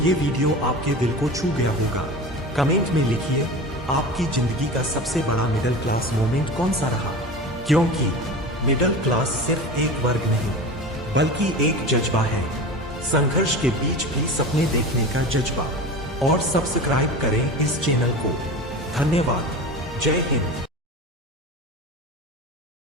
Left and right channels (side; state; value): both; normal; correlation 0.31